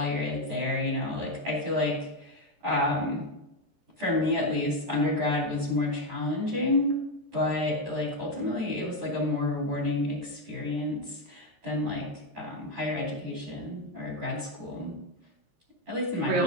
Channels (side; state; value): left; late; 13 ms